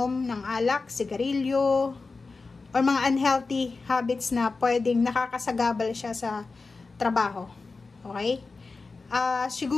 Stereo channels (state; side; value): quieter; right; 4.0 dB